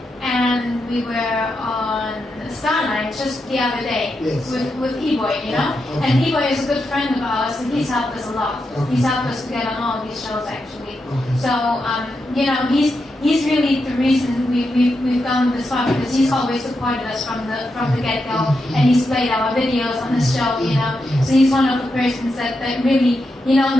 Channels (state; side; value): normal; both; correlation 0.86